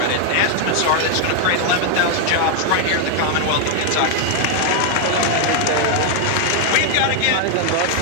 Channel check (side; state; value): both; different; correlation 0.00